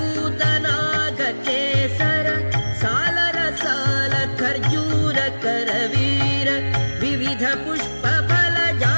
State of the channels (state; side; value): inverted; both; correlation -1.00